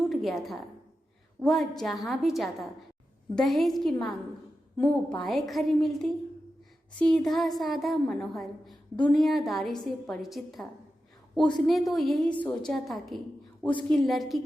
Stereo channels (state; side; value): normal; both; correlation 0.91